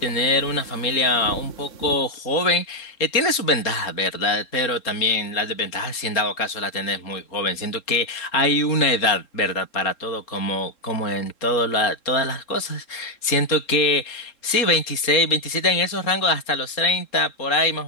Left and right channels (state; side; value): late; right; 3.7 ms